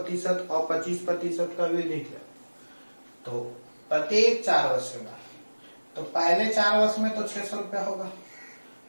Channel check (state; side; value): inverted; both; correlation -1.00